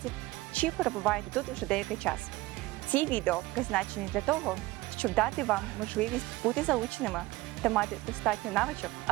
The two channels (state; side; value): quieter; left; 19.3 dB